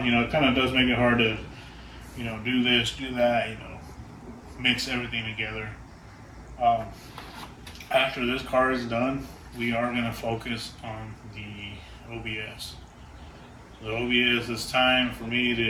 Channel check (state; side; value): identical; both; correlation 1.00